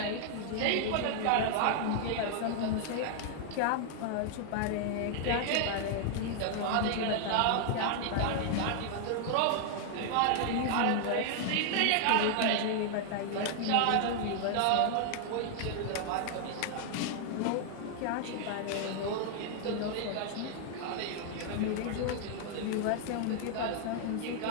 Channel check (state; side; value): different; both; correlation 0.00